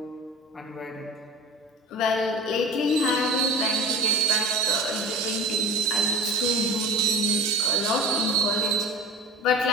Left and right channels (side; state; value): both; normal; correlation 0.36